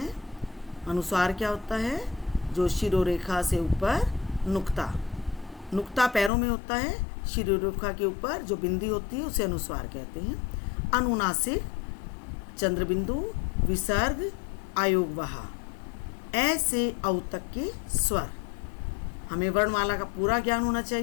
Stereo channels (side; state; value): right; drops out; at 6.3 s